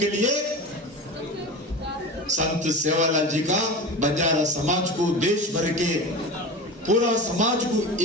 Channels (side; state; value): both; normal; correlation 0.29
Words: लिए संत सेवालाल जी का बंजारा समाज को, देश भर के पूरा समाज को